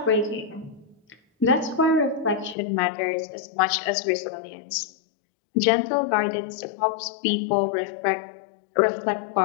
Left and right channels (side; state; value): right; drops out; at 2.6 s